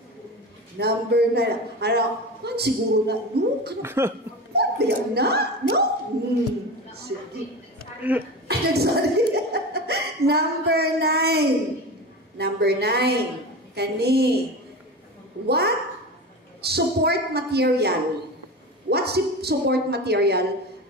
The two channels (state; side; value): normal; both; correlation 0.27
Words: Number 9. Siguro na, no? Ano na? No? Sige. Sorry. Number 9. Number 9. Kani. What support material what support material